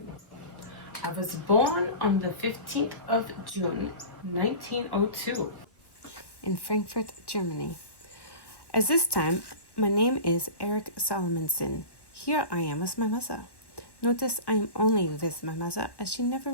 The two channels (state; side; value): late; right; 1.1 ms